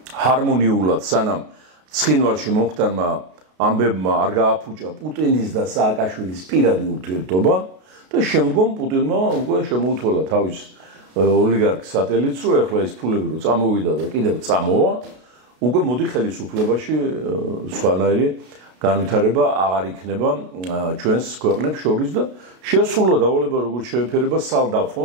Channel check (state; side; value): late; left; 33 ms